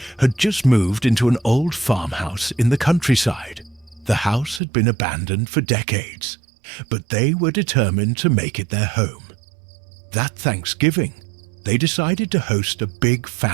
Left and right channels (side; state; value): left; drops out; at 4.6 s